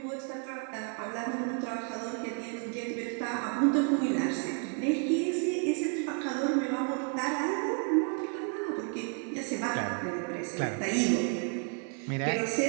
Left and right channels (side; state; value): left; quieter; 39.8 dB